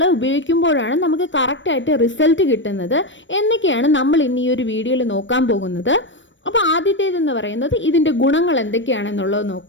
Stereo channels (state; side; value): late; right; 0.54 ms